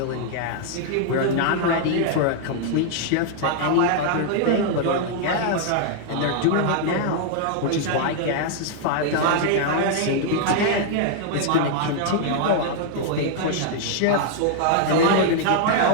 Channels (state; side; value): different; both; correlation 0.00